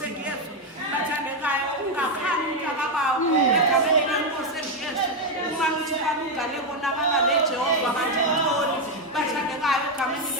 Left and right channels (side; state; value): both; normal; correlation 0.05